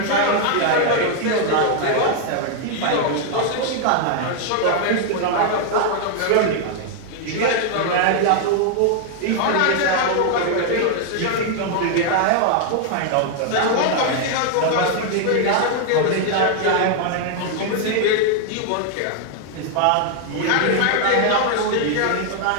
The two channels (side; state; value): both; different; correlation 0.00